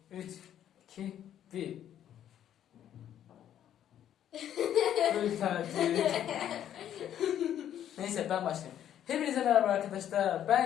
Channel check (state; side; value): quieter; right; 10.6 dB